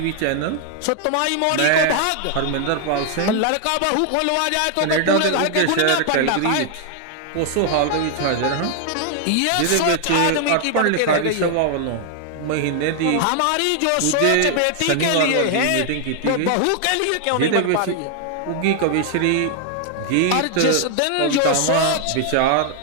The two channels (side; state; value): both; different; correlation 0.00